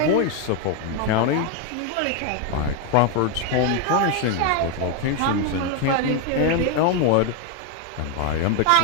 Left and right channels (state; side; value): different; both; correlation 0.01